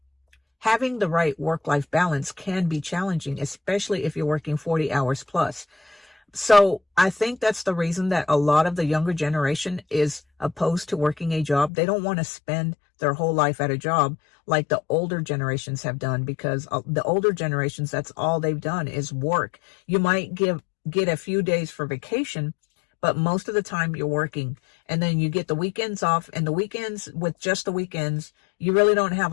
having the right work-life balance can be challenging, especially if you're working 40 hours plus. So I think that's the reason that a lot of the younger generation is opposed to working a job. They don't want to spend their whole life at a job like the older generations have done, because the older generations, that's all they've done is work. You might get a few days for vacation, but most of the time you're working, and then you get the weekends off, and the weekends, with just the weekends, you really don't have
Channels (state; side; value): drops out; right; at 11.7 s